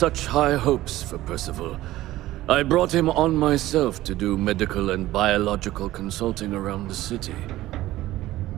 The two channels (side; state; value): left; quieter; 16.0 dB